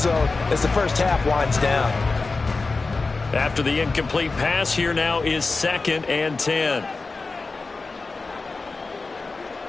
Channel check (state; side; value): quieter; right; 3.8 dB